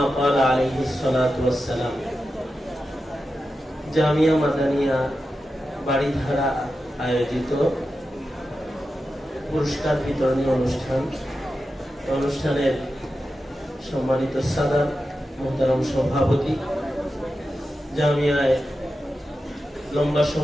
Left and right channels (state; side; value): normal; both; correlation 0.91